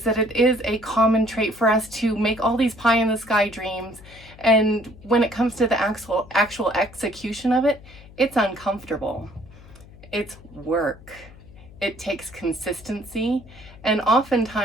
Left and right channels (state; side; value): noise; left; hum, 21 dB below the sound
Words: that it is a common trait for us to make all these pie in the sky dreams, and when it comes to the actual execution of it, it's uncomfortable. It's work. It takes consistency, and